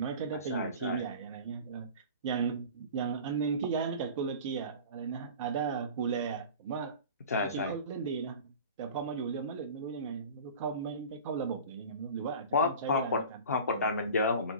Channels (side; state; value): both; inverted; correlation -0.38